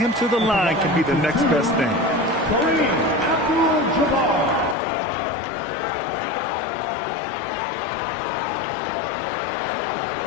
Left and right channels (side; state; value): right; drops out; at 4.8 s